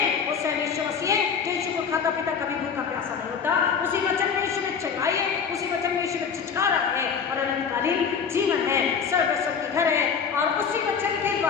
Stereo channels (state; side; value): quieter; right; 6.5 dB